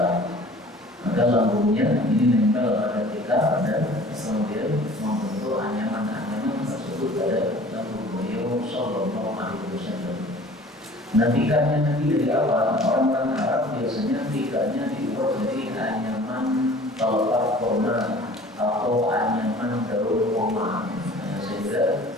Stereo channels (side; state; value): both; normal; correlation 0.47